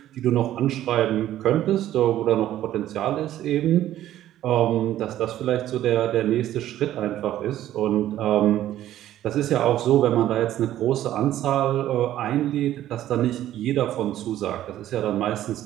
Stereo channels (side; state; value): left; quieter; 12.9 dB